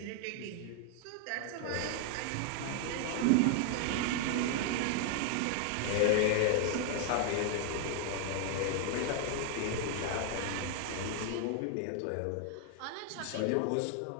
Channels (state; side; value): different; both; correlation 0.00